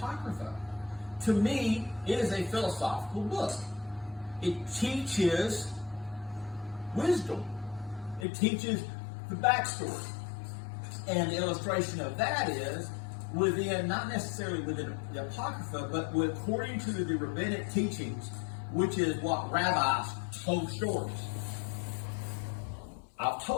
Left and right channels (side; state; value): right; drops out; at 8.2 s